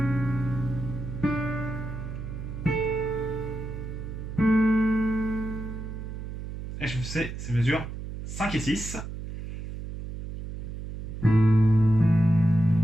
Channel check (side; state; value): right; noise; hum, 8 dB below the sound